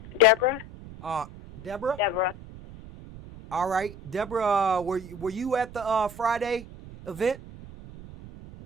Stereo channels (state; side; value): noise; right; rumble, 15 dB below the sound